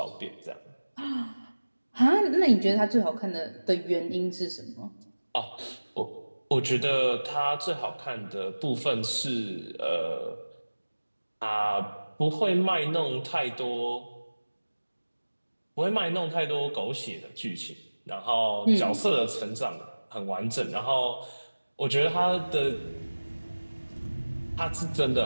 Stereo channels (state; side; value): inverted; both; correlation -1.00